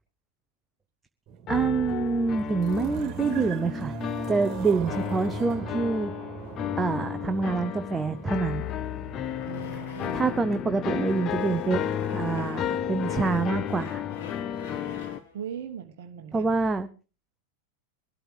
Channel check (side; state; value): both; normal; correlation 0.69